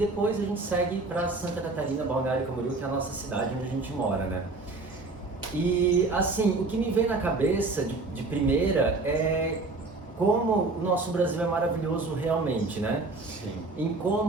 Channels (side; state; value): left; quieter; 3.5 dB